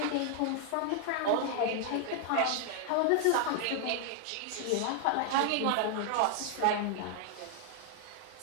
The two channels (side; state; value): both; different; correlation 0.00